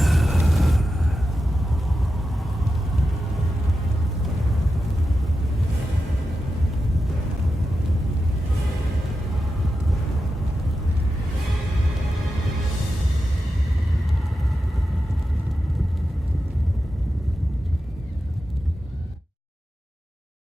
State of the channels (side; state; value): both; normal; correlation 0.90